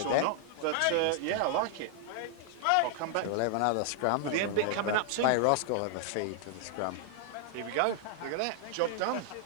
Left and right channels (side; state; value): both; different; correlation 0.00